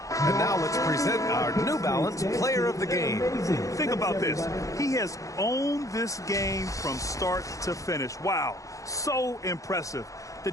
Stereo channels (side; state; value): right; late; 0.16 ms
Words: And now let's present our New Balance Player of the Game. Think about this. He has owned this game from start to finish. Wow, so impressive. The